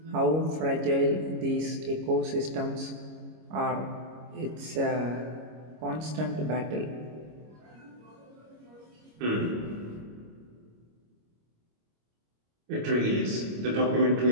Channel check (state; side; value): late; left; 25 ms